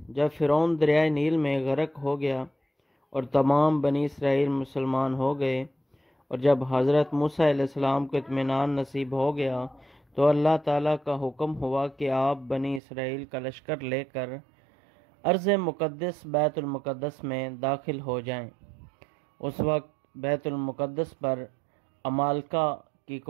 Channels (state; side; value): drops out; left; at 12.8 s